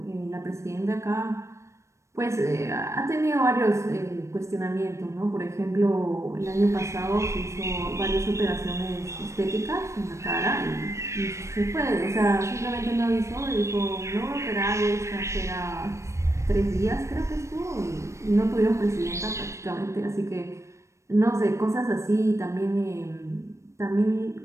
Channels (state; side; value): late; left; 0.14 ms